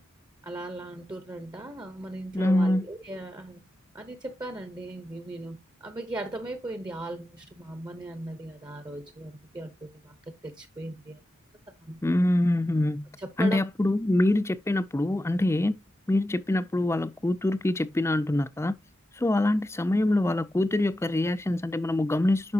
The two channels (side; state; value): both; normal; correlation 0.91